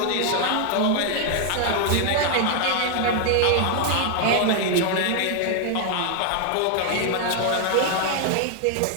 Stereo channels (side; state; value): both; different; correlation 0.00